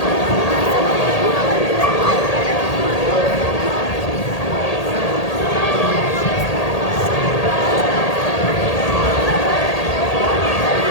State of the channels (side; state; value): right; late; 1.8 ms